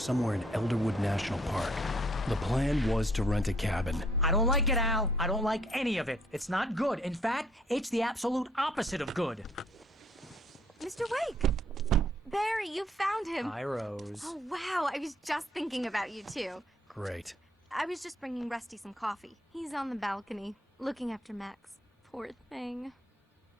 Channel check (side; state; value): both; normal; correlation 0.64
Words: in Elderwood National Park. The plan was to rent a cabin. I don't like it, Al. I don't like any of it. It's not good. In fact, it's the absolute opposite of good. Mr. Wake! Barry, you found him. Hi, Rose. Oh, wow. I was just thinking about you, too. Great. I was just bringing Rusty some coffee. He's on the balcony, looking after Max. Poor thing.